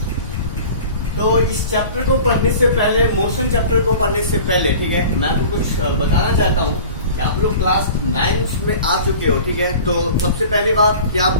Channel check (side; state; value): both; inverted; correlation -0.41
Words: तो इस चैप्टर को पढ़ने से पहले, मोशन चैप्टर को पढ़ने से पहले, ठीक है, मैं आपको कुछ बताना चाहता हूँ कि आप लोग क्लास 9 में आ चुके हो, ठीक है। तो सबसे पहली बात कि